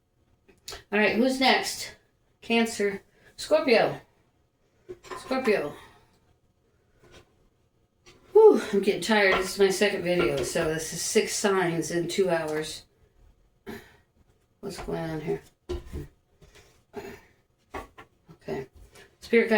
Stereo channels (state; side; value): identical; both; correlation 1.00